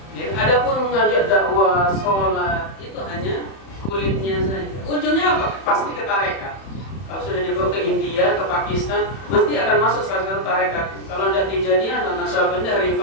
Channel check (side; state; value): right; late; 31 ms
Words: Adapun mengajak dakwah, sholat, itu hanya kulitnya saja. Ujungnya apa? Pasti ke tarekat. Kalau sudah dibawa ke India, ke Pakistan, mesti akan masuk salah satu tarekat. Kalau tidak Tijaniyah, Naqsyabandiyah,